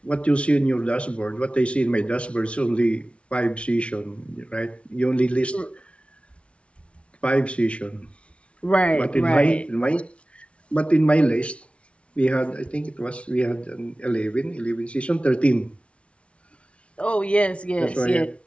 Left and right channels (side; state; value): right; late; 0.061 ms